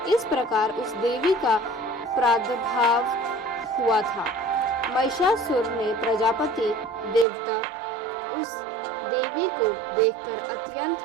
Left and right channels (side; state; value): left; drops out; at 7.2 s